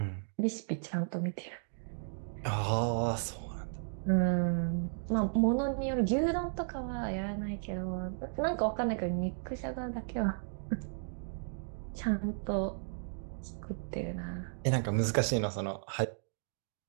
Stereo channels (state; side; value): silent; left; digital silence